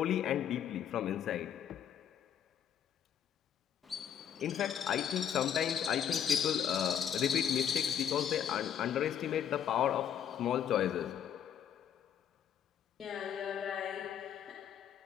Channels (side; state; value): right; quieter; 9.0 dB